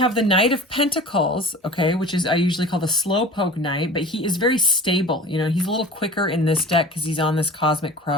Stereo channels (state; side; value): normal; both; correlation 0.40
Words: the Knight of Pentacles, okay, which is I usually call the slowpoke knight, but he is very stable. You know, he's a little quicker in this deck because he's on this cosmic